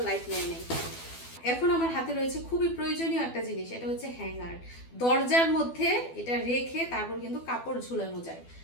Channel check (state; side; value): late; right; 12 ms